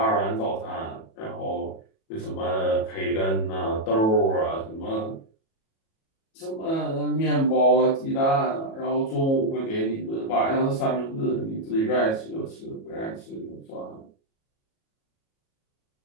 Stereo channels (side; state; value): right; late; 37 ms